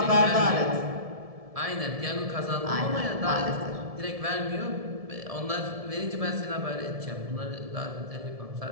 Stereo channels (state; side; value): late; left; 1.7 ms